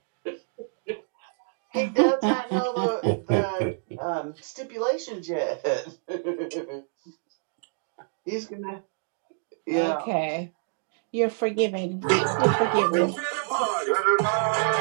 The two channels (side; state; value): left; silent; digital silence